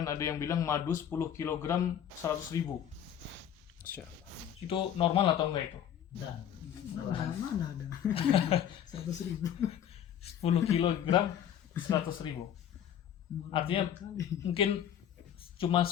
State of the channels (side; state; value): right; quieter; 9.7 dB